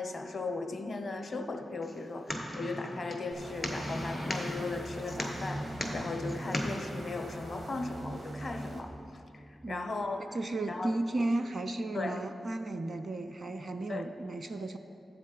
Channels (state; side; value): normal; both; correlation 0.90